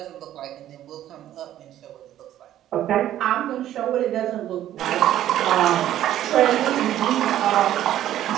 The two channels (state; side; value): quieter; left; 12.3 dB